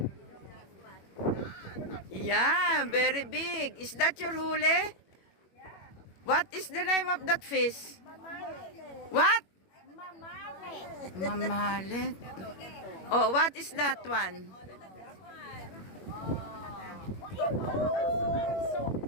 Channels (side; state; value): right; late; 21 ms